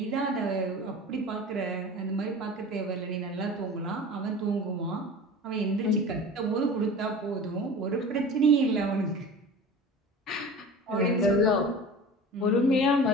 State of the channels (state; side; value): normal; both; correlation 0.37